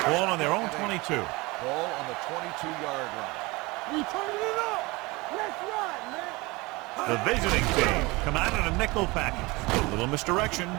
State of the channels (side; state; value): left; quieter; 23.7 dB